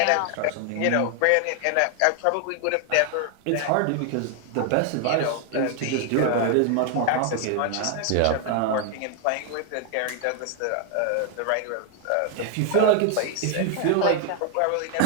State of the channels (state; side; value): different; both; correlation 0.00